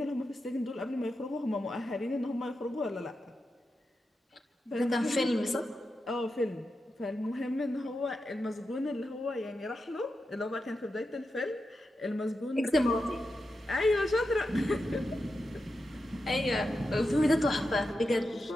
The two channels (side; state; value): both; normal; correlation 0.89